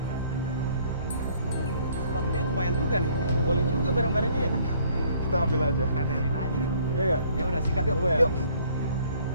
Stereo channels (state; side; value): inverted; both; correlation -0.60